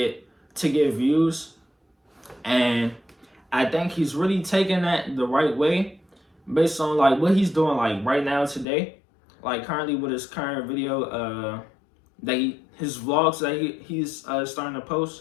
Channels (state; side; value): drops out; right; at 8.7 s